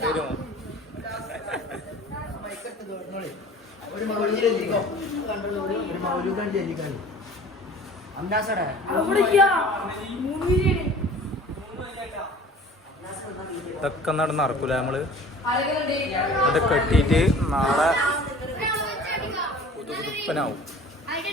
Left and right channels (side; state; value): both; normal; correlation 0.45